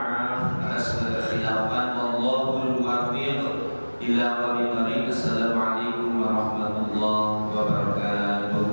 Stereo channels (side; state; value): both; inverted; correlation -1.00